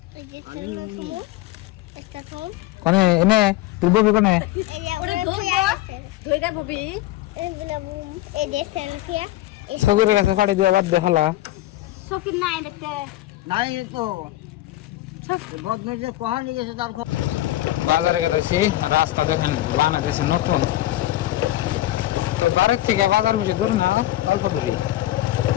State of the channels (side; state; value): right; quieter; 15.6 dB